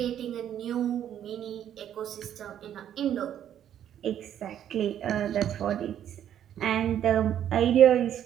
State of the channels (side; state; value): left; quieter; 10.3 dB